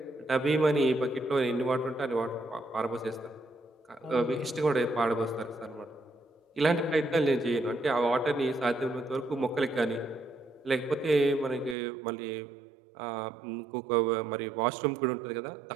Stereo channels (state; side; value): drops out; left; at 11.8 s